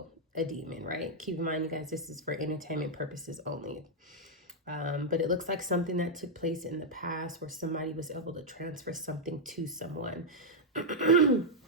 a demon, right? Keep in mind, you guys, this is for entertainment purposes only. But it looks like something that took place in the past where somebody was able to transfer something to someone.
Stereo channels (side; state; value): both; normal; correlation -0.03